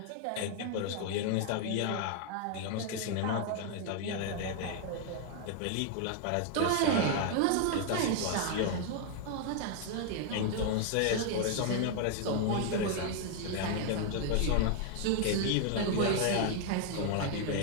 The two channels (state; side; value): different; both; correlation 0.00